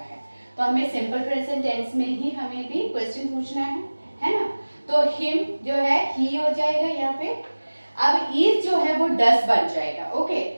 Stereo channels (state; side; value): inverted; both; correlation -1.00